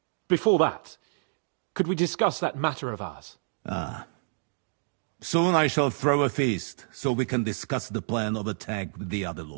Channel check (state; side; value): silent; left; digital silence